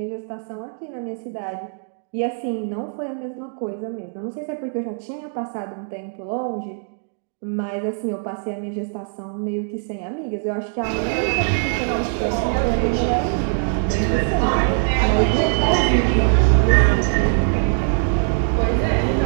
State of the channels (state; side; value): silent; left; 64 dB below the other